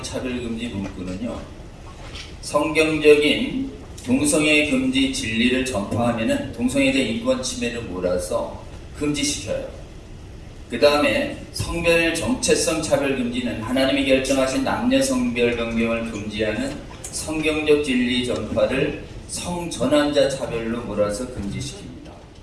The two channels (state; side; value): identical; both; correlation 1.00